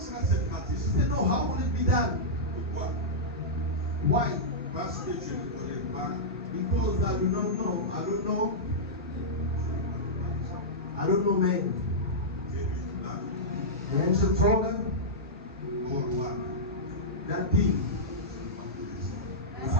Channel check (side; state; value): both; normal; correlation -0.11